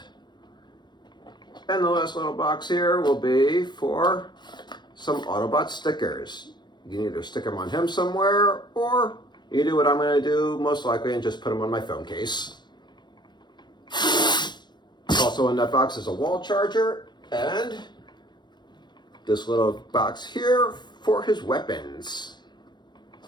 And the last little box here will be for some Autobot stickers. You can either stick them on him somewhere, or you do what I'm going to do most likely and just put them on my phone case. Also in that box is a wall charger and this little box here for his weapons.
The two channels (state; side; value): late; right; 0.21 ms